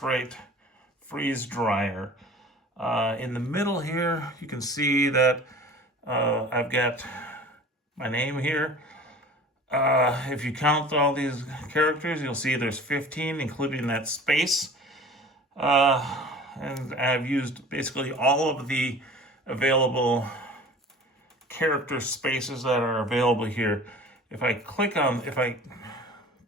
Right freeze dryer. In the middle here, you can see that I've got my name here. If you count all these characters, you'll see there's 15, including that space. And I've used basically all of the available character spaces that are available here. If I click on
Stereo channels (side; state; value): both; normal; correlation 0.42